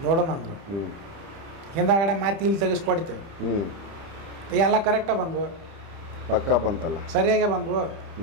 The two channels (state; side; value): late; left; 30 ms